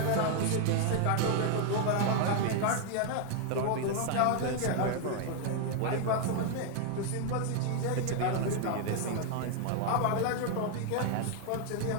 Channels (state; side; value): different; both; correlation 0.00